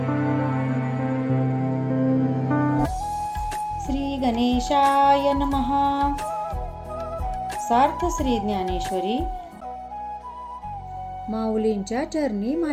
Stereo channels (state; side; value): identical; both; correlation 1.00